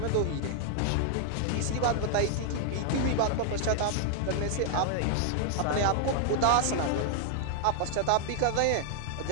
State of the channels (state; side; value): different; both; correlation 0.00